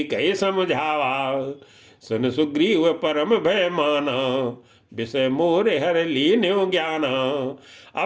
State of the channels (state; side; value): identical; both; correlation 1.00